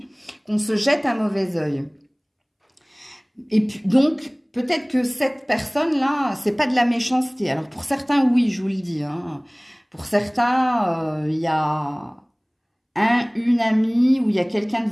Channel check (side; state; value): both; identical; correlation 1.00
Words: qu'on se jette un mauvais œil. Et puis, donc... peut-être que cette personne-là, c'est pas de la méchanceté. Alors, pour certains, oui, je vous le dis. Hein. Pour certains, il y a une amie ou il y a quelqu'un de